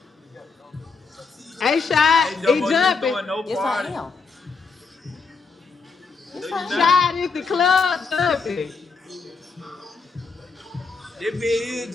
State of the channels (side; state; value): right; quieter; 4.7 dB